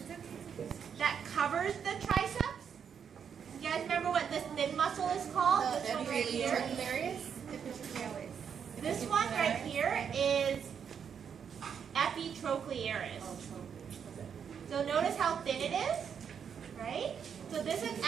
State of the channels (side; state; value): left; quieter; 7.4 dB